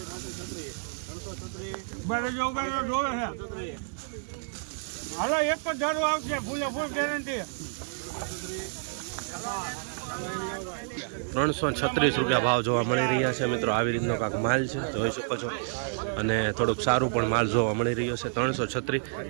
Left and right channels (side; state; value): left; silent; digital silence